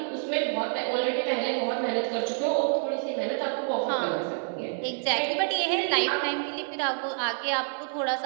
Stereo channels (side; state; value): left; silent; 58 dB below the other